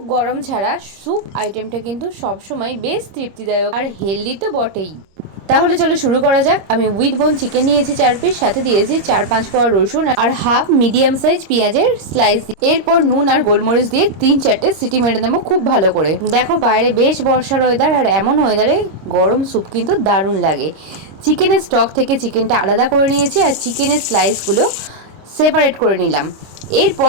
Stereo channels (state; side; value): late; left; 25 ms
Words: গরম ছাড়া স্যুপ আইটেমটা কিন্তু সবসময় বেশ তৃপ্তিদায়ক আর হেলদি তো বটেই। তাহলে চলো শুরু করা যাক। আমি উইথ বোন চিকেন নিয়েছি 4 পিস, সাথে দিয়েছি 4-5 কোয়া রসুন আর হাফ মিডিয়াম সাইজ পেঁয়াজের স্লাইস। এরপর নুন আর গোলমরিচ দিয়ে 3-4টে সিটি মেরে নেবো খুব ভালো করে। দেখো বাইরে বেশ বর্ষার ওয়েদার, আর এমন ওয়েদারে গরম স্যুপ কিন্তু দারুণ লাগে। চিকেনের স্টক থেকে চিকেনটা আলাদা করে নিয়েছি আর চিকেনের স্লাইসগুলো সেপারেট করে নিলাম।